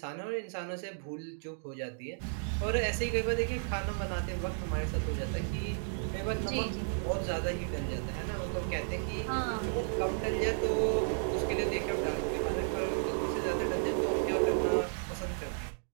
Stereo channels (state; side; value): silent; left; digital silence